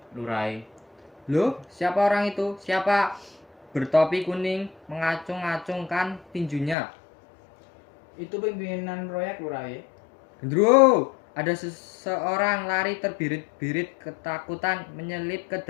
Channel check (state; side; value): drops out; right; at 6.8 s